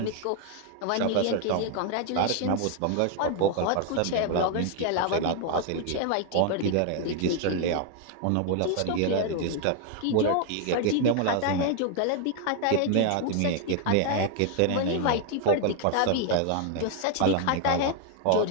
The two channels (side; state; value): both; different; correlation 0.00